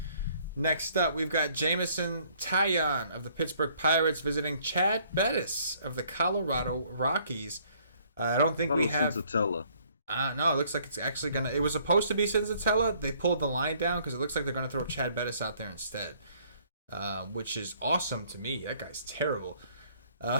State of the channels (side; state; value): both; inverted; correlation -0.62